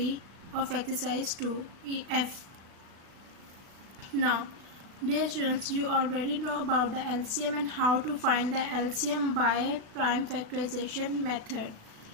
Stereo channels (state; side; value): late; left; 36 ms